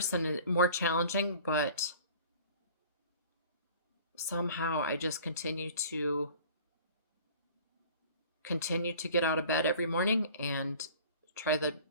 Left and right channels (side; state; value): both; inverted; correlation -0.46